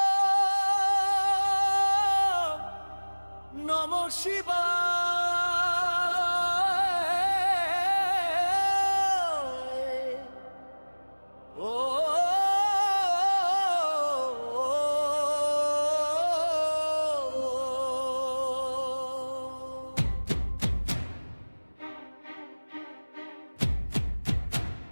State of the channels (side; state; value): both; inverted; correlation -1.00